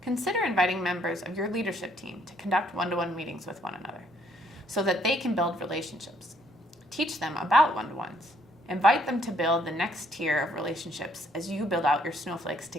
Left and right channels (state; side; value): normal; both; correlation 0.67